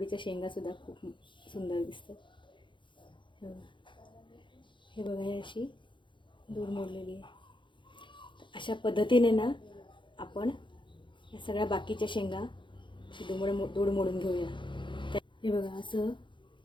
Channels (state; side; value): late; right; 0.23 ms